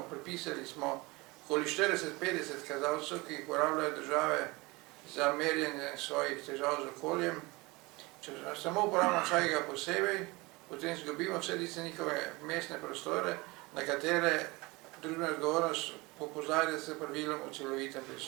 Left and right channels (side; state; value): left; quieter; 23.9 dB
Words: prepisali smo okoli 40-50 kazalcev, ki jih uporabljajo države za merjenje svojih težav z okoljem. Če samo uporabljamo vsakega posebej, potem zgubimo vse tiste njihove mestne prostore, na katere družbena odgovornost opozarja s pravilom o celovitem